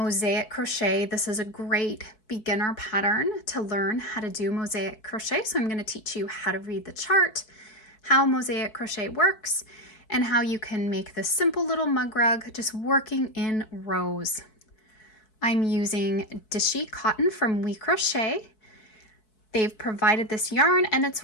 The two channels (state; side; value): late; right; 4.6 ms